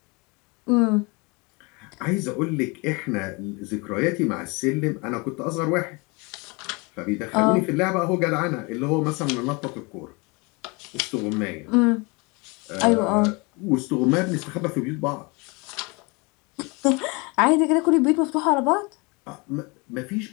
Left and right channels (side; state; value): right; quieter; 28.3 dB